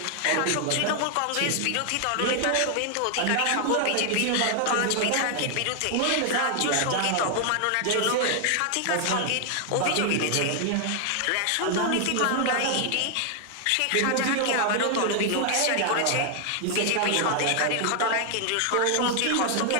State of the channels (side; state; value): both; different; correlation 0.00